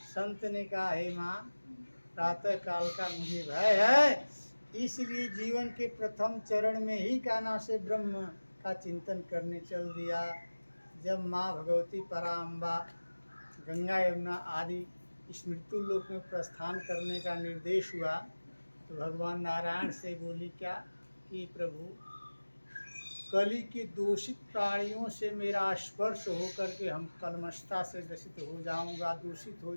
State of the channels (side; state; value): both; inverted; correlation -1.00